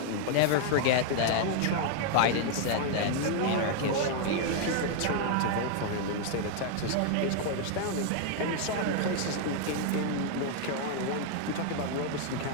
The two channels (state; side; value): different; both; correlation 0.00